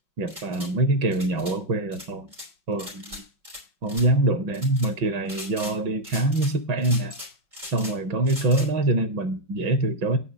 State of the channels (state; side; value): late; left; 5.4 ms